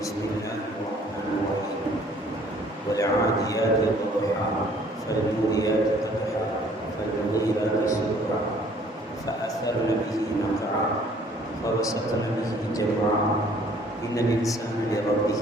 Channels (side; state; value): both; normal; correlation 0.57